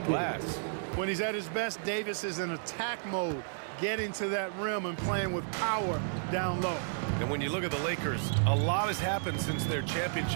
When he's at his best, Davis is in attack mode, getting to that rim and playing with power down low. And when you look at the Lakers, a lot has happened since their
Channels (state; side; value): silent; left; 56 dB below the other